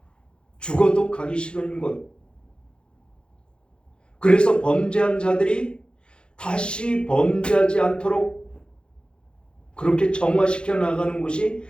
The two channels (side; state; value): right; late; 0.053 ms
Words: 죽어도 가기 싫은 곳. 그래서 범죄한 자들이 다시 범죄하지 않도록 그렇게 정화시켜 나가는 곳이